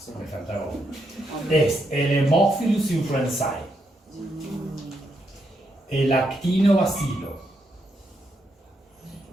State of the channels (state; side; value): normal; both; correlation 0.80